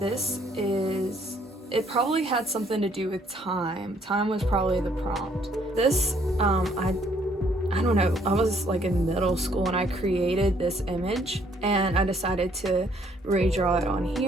It probably had something to do with time. Time was probably the prompt. This, I don't know, I was like in middle school and I created this image, and I decided to redraw it on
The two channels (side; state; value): both; normal; correlation 0.65